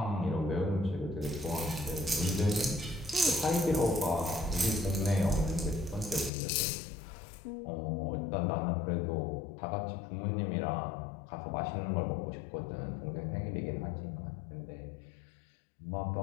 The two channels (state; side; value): drops out; right; at 6.3 s